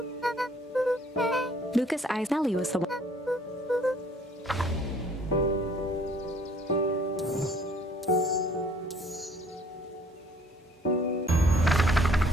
Luka's eyes. Nellie was the one.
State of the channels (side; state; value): both; normal; correlation 0.58